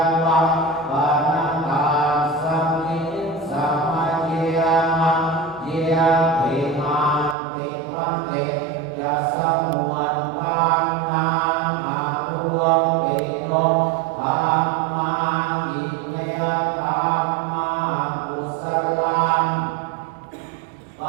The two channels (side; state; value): left; drops out; at 7.4 s